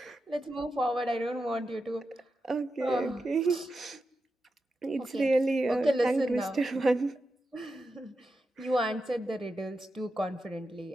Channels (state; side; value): normal; both; correlation 0.89